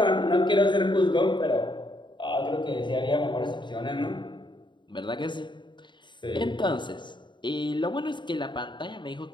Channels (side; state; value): right; late; 0.23 ms